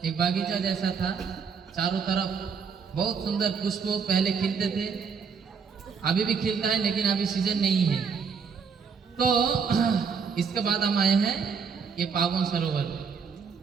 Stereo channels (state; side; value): quieter; left; 6.0 dB